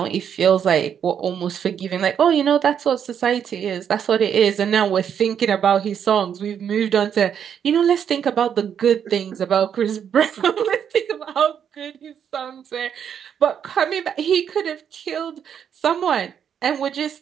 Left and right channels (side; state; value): left; quieter; 8.3 dB